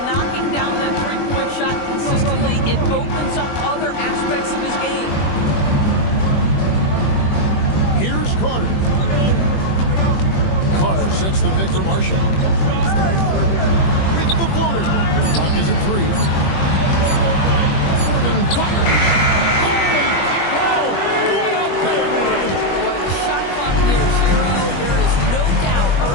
down that three-point shot consistently, it opens up other aspects of his game. Here's Carter. Carter sets the pick for Marshall. With the floater. Clock is at 3. Irving fires. Holy cow! What a bang! Boy, the shot clock near 0. There is no doubt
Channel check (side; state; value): right; late; 21 ms